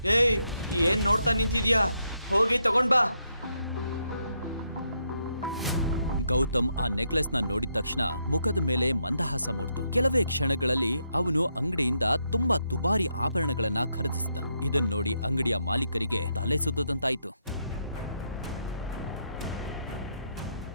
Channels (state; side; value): inverted; both; correlation -0.79